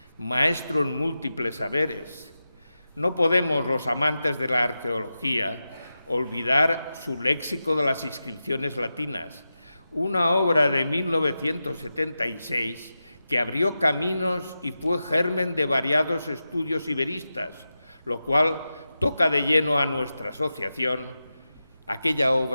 maestro en múltiples saberes? No podemos, los amantes de la arqueología, olvidar su léxico de las inscripciones latinas, una obra de 1976 que abrió caminos y fue germen de variados estudios iberistas, lo cual toca de lleno a nuestra asociación. Aquella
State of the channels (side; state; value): both; inverted; correlation -0.91